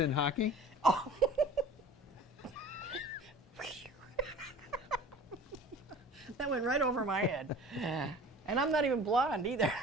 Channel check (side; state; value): both; normal; correlation 0.43